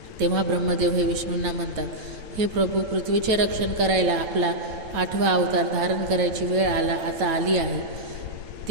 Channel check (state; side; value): late; left; 9.0 ms